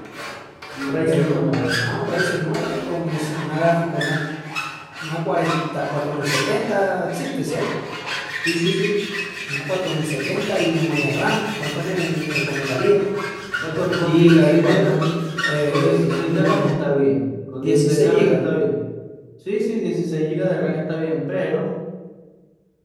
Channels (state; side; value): identical; both; correlation 1.00